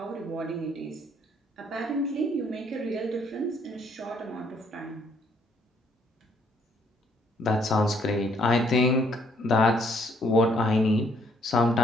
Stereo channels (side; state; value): both; normal; correlation 0.66